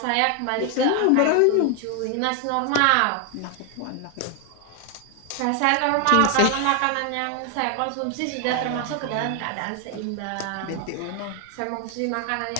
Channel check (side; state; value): both; different; correlation 0.01